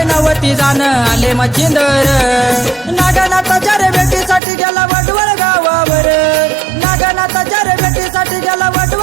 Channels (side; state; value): left; drops out; at 4.4 s